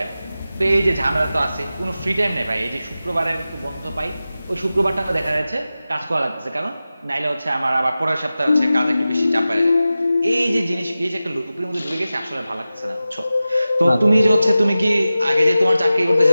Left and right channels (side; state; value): both; inverted; correlation -0.95